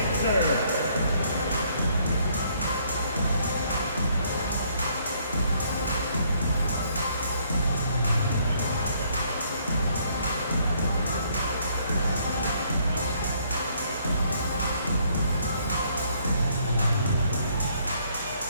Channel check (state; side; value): inverted; both; correlation -0.67